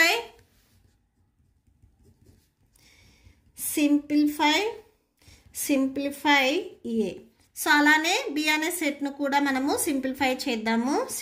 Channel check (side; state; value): both; identical; correlation 1.00